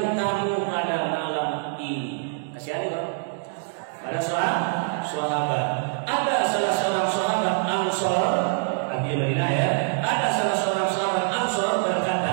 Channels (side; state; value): left; silent; digital silence